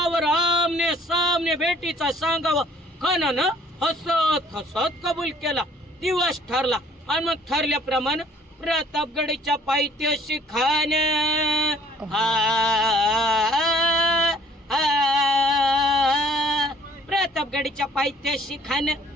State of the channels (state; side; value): normal; both; correlation 0.57